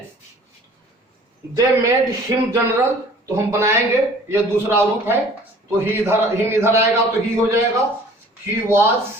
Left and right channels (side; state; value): both; normal; correlation 0.50